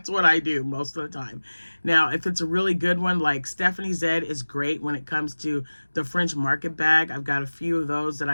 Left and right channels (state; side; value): inverted; both; correlation -1.00